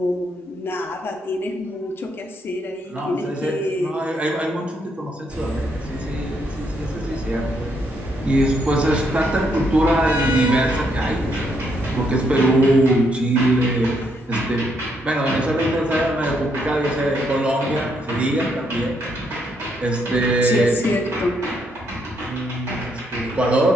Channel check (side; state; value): both; normal; correlation 0.75